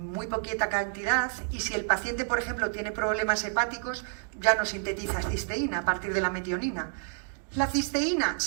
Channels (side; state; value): left; silent; 56 dB below the other